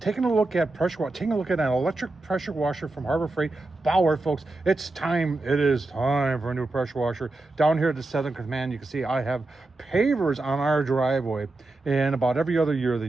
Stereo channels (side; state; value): left; quieter; 3.0 dB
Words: a look at taking a look at an electric pressure washer from Harbor Freight, Bauer, folks. It's time. It is time for a new pressure washer. Down here at the Southern Command, you can see I have Pavers on our driveway, and about every other year they